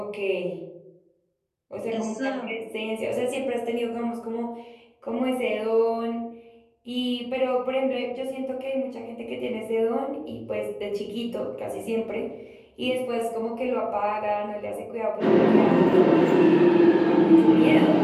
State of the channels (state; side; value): identical; both; correlation 1.00